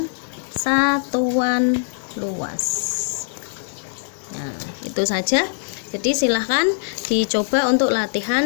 satuan luas. Nah, itu saja. Jadi silahkan dicoba untuk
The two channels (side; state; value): right; silent; digital silence